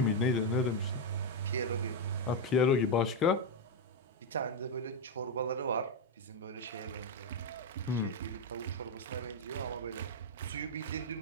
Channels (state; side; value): normal; both; correlation 0.03